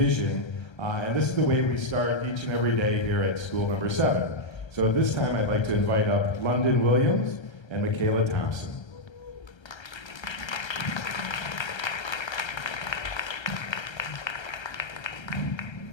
and this is the way we start each and every day here at School number 7. So at this time, I'd like to invite up London Williams and Michaela Thompson.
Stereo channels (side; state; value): right; late; 1.3 ms